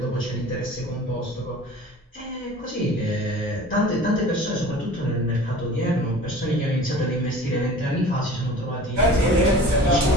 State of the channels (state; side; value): normal; both; correlation 0.42